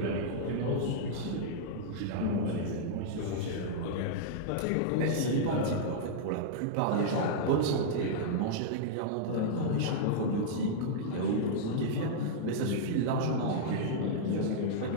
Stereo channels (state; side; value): different; both; correlation -0.02